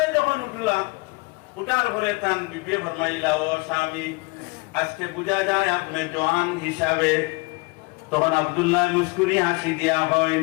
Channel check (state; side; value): quieter; right; 26.8 dB